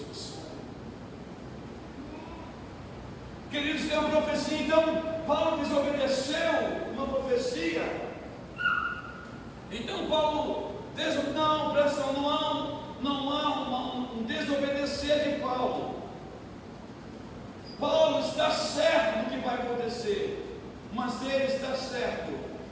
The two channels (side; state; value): both; identical; correlation 1.00